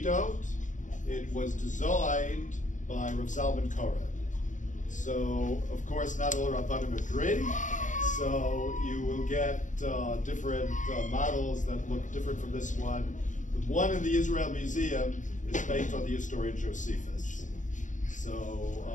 It was designed by Rav Zalman Koren. So, of course, not all Rabbanim agree. So you will get different models that look different from this one. The one in the Israel Museum is based on the historian Josephus. So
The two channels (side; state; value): right; late; 0.37 ms